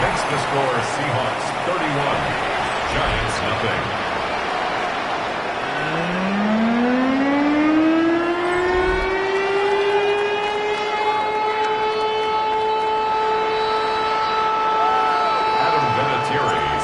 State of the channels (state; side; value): identical; both; correlation 1.00